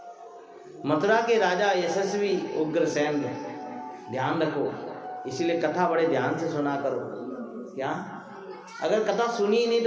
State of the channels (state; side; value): identical; both; correlation 1.00